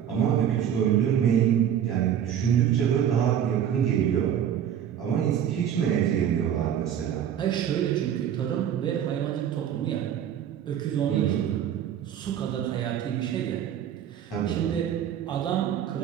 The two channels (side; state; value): left; quieter; 9.6 dB